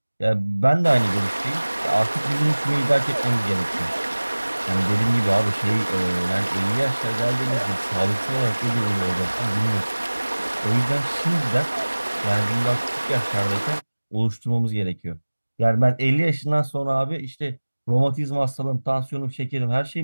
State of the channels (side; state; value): both; inverted; correlation -1.00